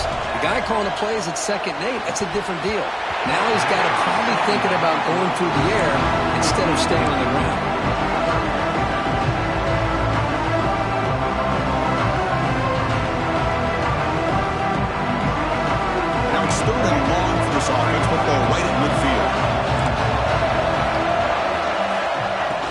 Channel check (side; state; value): both; identical; correlation 1.00